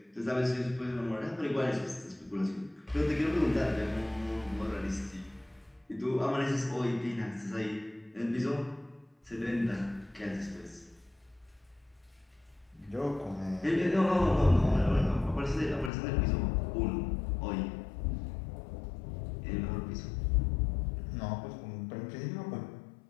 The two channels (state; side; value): drops out; right; at 15.9 s